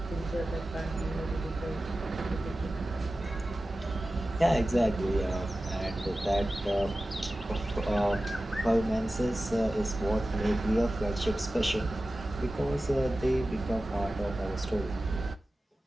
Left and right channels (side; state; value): both; normal; correlation 0.95